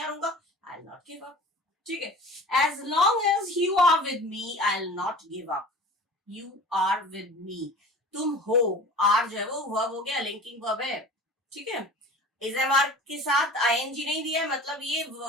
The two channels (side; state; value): both; normal; correlation 0.40